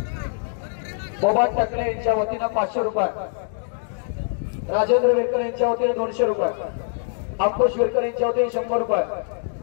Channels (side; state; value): right; silent; digital silence